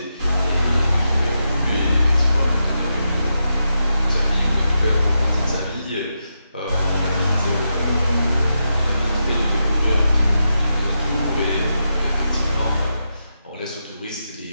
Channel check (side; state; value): both; inverted; correlation -0.86